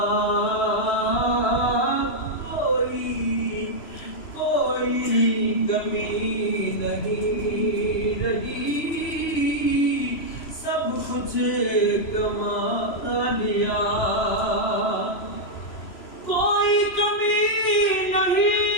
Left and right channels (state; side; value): late; right; 3.0 ms